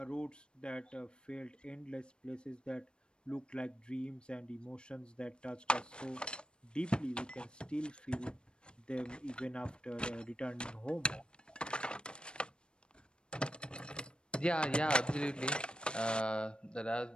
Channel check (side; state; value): right; late; 0.053 ms